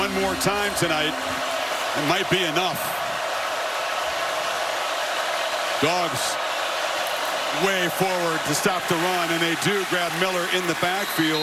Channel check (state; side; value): identical; both; correlation 1.00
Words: more time tonight. It might be enough. Dogs way forward to stop the run, and they do grab Miller in the